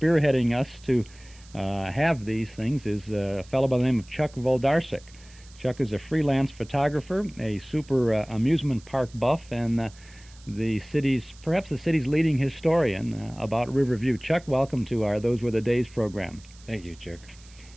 us to have these things is a fellow by the name of Chuck Voldarsik. Chuck is a freelance photographer, a super amusement park buff, and perhaps the city's leading historian about Riverview. Chuck, welcome to our Those Were the Days program. Thank you, Chuck.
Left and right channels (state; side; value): noise; right; hiss, 24 dB below the sound